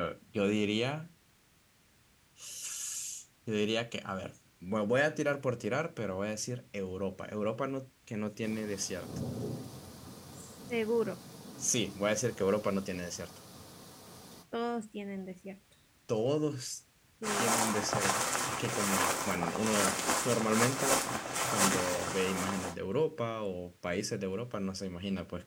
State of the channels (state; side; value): identical; both; correlation 1.00